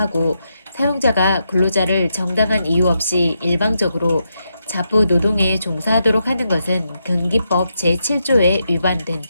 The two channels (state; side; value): inverted; both; correlation -0.83